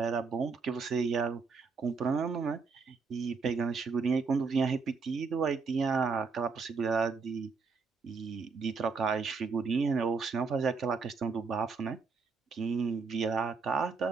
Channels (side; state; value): left; quieter; 4.9 dB